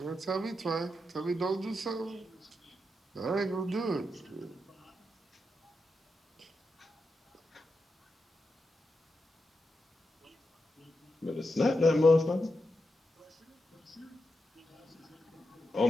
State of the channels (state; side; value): normal; both; correlation 0.87